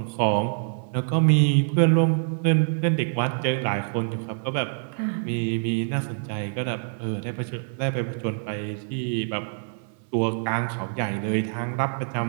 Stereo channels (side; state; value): left; silent; 61 dB below the other